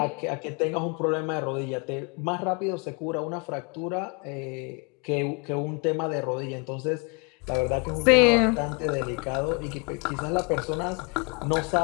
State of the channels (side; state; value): right; quieter; 32.6 dB